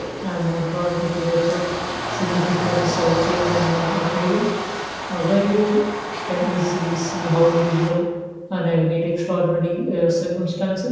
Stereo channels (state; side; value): identical; both; correlation 1.00